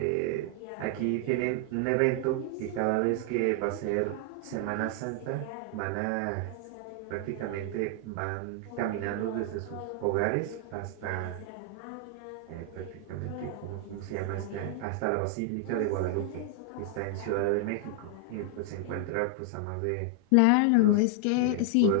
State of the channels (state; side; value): different; both; correlation 0.00